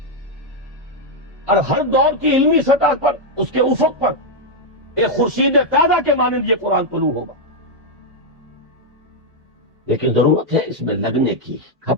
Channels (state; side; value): normal; both; correlation -0.01